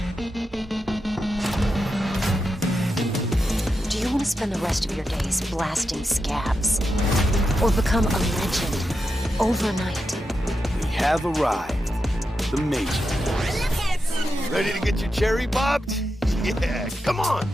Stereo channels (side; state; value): both; normal; correlation 0.87